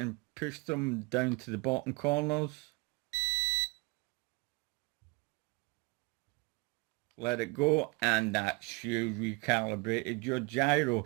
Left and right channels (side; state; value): left; quieter; 27.7 dB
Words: push them down to the bottom corners. Let it go, and that's you recalibrated your gyro.